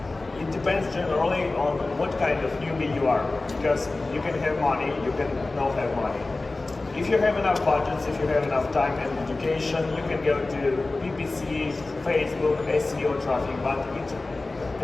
It depends generally on what kind of newbie you are, because you can have money, you can not have money. If you have enough budgets, if you have enough time and education, you can go to PPC, Facebook, SEO traffic, but it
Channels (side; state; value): right; quieter; 3.2 dB